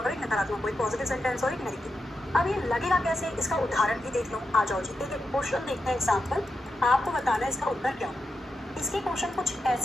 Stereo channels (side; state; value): both; normal; correlation 0.87